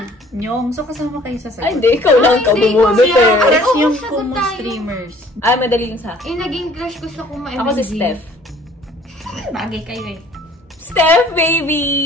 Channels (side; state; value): both; normal; correlation 0.55